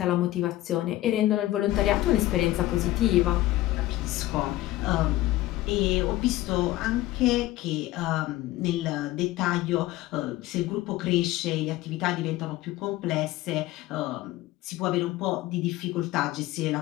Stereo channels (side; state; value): right; quieter; 16.5 dB